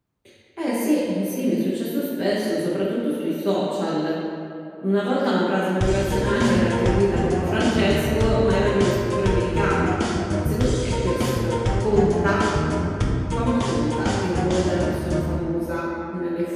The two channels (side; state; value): both; identical; correlation 1.00